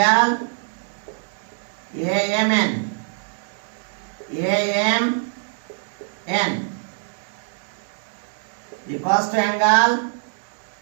AMN equals to angle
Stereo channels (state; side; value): silent; left; digital silence